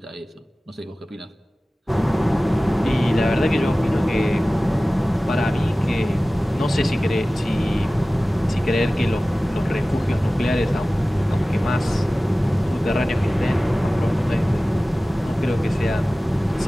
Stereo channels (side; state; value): both; normal; correlation 0.97